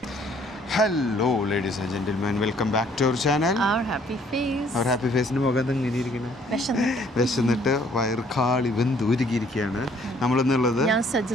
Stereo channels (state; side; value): normal; both; correlation 0.62